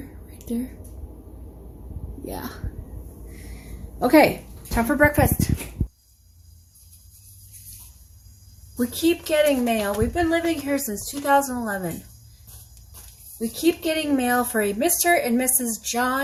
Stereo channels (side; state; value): both; identical; correlation 1.00